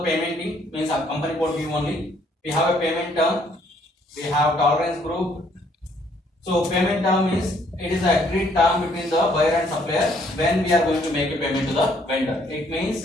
means a company code view only. We have a payment term, we have tolerance group. So payment term is it is an agreed term between the buyer and supplier when we are going to make a payment to the vendor. It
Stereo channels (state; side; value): normal; both; correlation 0.66